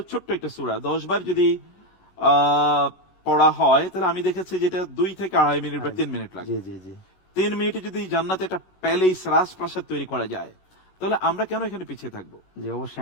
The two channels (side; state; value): right; late; 20 ms